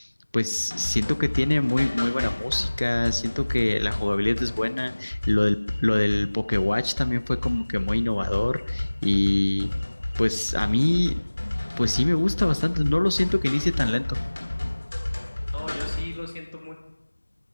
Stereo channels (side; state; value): both; inverted; correlation -1.00